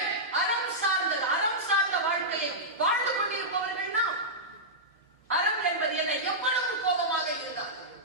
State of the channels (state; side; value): normal; both; correlation -0.11